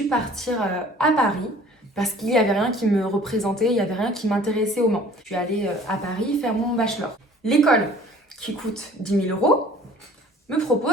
partir à Paris parce qu'il n'y avait rien qui me représentait, il n'y avait rien qui m'intéressait au Mans. Je suis allée à Paris faire mon bachelor. L'école, qui coûte 10 000 €, me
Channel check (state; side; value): normal; both; correlation 0.51